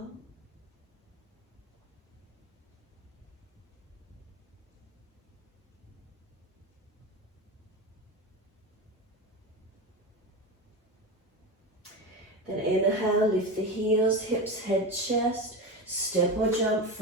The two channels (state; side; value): normal; both; correlation 0.22